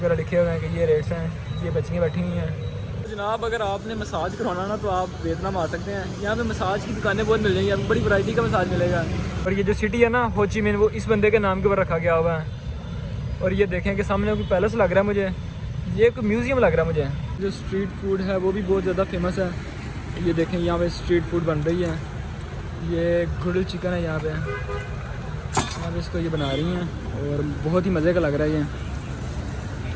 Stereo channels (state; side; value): identical; both; correlation 1.00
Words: लिखे हुए हैं कि ये रेट्स हैं। ये बच्चियाँ बैठी हुई हैं। जनाब अगर आपने मसाज करवाना ना तो आप वियतनाम आ सकते हैं। यहाँ पे मसाज की दुकानें बहुत मिल जाएंगी, आपको बड़ी वैरायटी का मसाज मिलेगा। और ये जो सिटी है ना हो ची मिन, वो इस बंदे के नाम के ऊपर रखा गया हुआ है। और ये देखें कि सामने कोई पैलेस लग रहा है मुझे, ये कोई म्यूज़ियम लग रहा है मुझे। जो स्ट्रीट फूड है वो भी बहुत ज़्यादा फेमस है। ये देखें यहाँ पे स्ट्रीट फूड बन रही है। ये ग्रिल्ड चिकन है यहाँ पे इसको ये बना रही हैं और बहुत ही मज़े का लग रहा है। ये